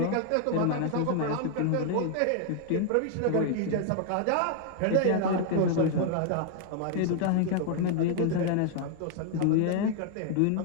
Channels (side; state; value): both; different; correlation 0.00